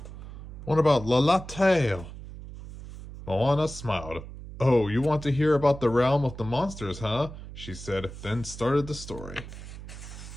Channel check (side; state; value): right; noise; hum, 13 dB below the sound